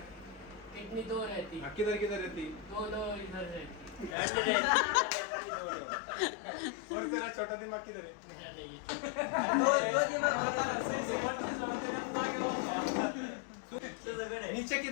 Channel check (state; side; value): drops out; right; at 4.2 s